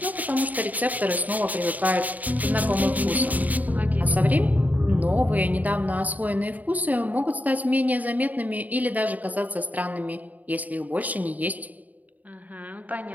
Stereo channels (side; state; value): left; late; 0.077 ms